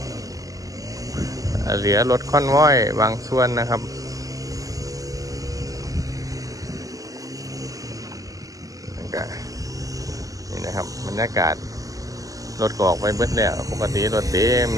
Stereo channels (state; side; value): late; left; 0.17 ms